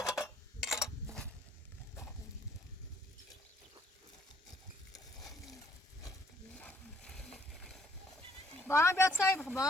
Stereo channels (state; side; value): normal; both; correlation 0.64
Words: Bana bir atsay bak